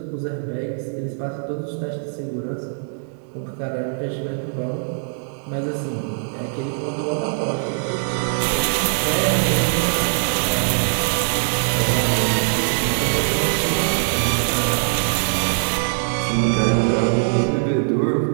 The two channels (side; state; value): left; silent; digital silence